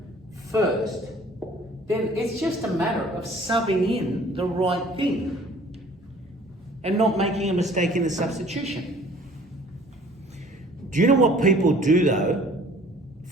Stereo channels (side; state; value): both; normal; correlation 0.52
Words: first, then it's just a matter of subbing in the right thing and not making a mistake in the substitution. Do you know what people do though